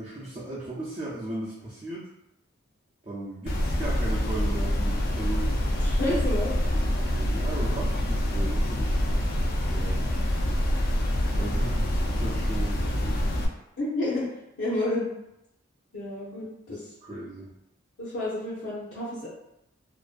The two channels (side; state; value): both; normal; correlation 0.86